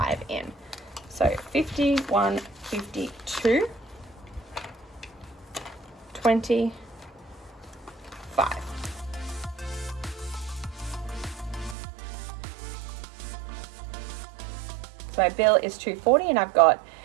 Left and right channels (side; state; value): left; drops out; at 11.8 s